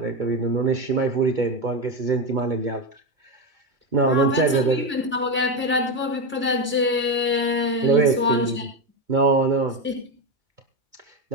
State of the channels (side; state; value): both; normal; correlation 0.12